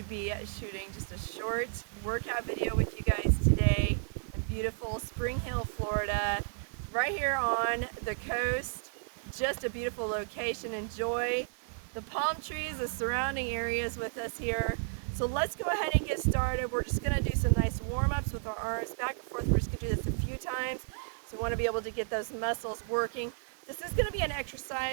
be shooting just a short workout video with you guys today in beautiful Spring Hill, Florida, right here on the coast. Just a beautiful location. Enjoy the palm trees, the surrounding areas with us here. So let's go ahead and get started. We're just going to do some nice warm-ups with our arms back and forth. We're just going to do this a few times. So we want to be able to get those muscles working. This is going to be an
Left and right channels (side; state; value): left; silent; 56 dB below the other